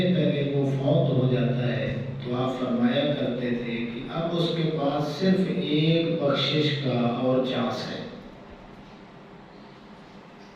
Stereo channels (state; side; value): identical; both; correlation 1.00